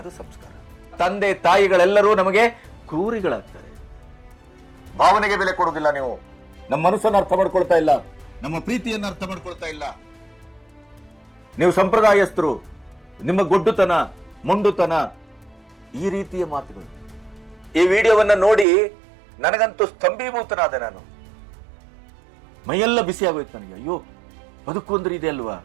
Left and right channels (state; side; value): drops out; left; at 18.7 s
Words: ಸಂಸ್ಕಾರ. ತಂದೆ ತಾಯಿಗಳೆಲ್ಲರೂ ನಮಗೆ ಕ್ರೂರಿಗಳಾಗ್ತಾರೆ. ಭಾವನೆಗೆ ಬೆಲೆ ಕೊಡುವುದಿಲ್ಲ. ನೀವು ನಮ್ಮ ಮನಸ್ಸನ್ನು ಅರ್ಥ ಮಾಡ್ಕೊಳ್ತಾ ಇಲ್ಲ, ನಮ್ಮ ಪ್ರೀತಿಯನ್ನು ಅರ್ಥ ಮಾಡ್ಕೊಳ್ತಾ ಇಲ್ಲ. ನೀವು ಸಂಪ್ರದಾಯಸ್ಥರು, ನಿಮ್ಮ ಗೊಡ್ಡುತನ, ಮೊಂಡುತನ, ಈ ರೀತಿಯ ಮಾತುಗಳು. ಈ ವಿಡಿಯೋವನ್ನ ನೋಡಿ ನನಗಂತೂ ಸ್ತಂಭೀಭೂತನಾದೆ. ನಾನು ಮೈಯೆಲ್ಲ ಬಿಸಿ ಆಗೋಯ್ತು ನನಗೆ. ಅಯ್ಯೋ, ಬದುಕು ಅಂದ್ರೆ ಇದೆ ಅಲ್ವಾ?